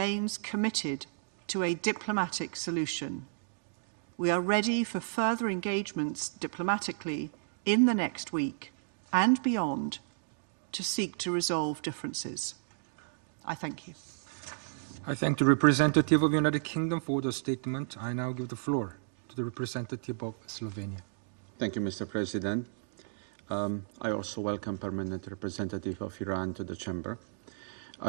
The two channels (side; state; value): left; silent; digital silence